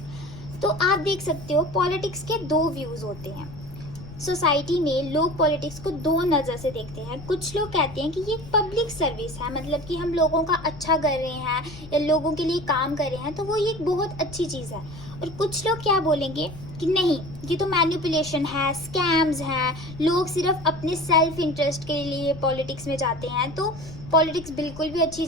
तो आप देख सकते हो पॉलिटिक्स के दो व्यूज़ होते हैं। सोसाइटी में लोग पॉलिटिक्स को दो नज़र से देखते हैं। कुछ लोग कहते हैं कि ये पब्लिक सर्विस है, मतलब कि हम लोगों का अच्छा कर रहे हैं या लोगों के लिए काम कर रहे हैं, तो वो ये एक बहुत अच्छी चीज़ है। और कुछ लोग क्या बोलेंगे कि नहीं, ये तो मैनिपुलेशन है, स्कैम्स हैं, लोग सिर्फ अपने सेल्फ इंटरेस्ट के लिए पॉलिटिक्स में जाते हैं, तो पॉलिटिक्स बिल्कुल भी अच्छी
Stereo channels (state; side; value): noise; left; rumble, 15 dB below the sound